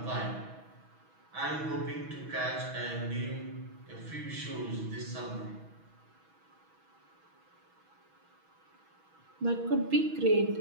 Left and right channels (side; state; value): left; late; 6.2 ms